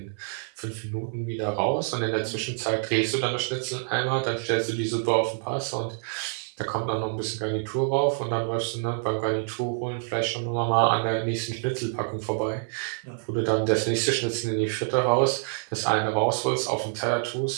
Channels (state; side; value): silent; left; 55 dB below the other